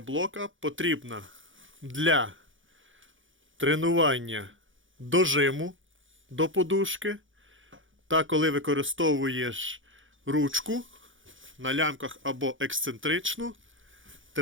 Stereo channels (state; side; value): late; left; 0.57 ms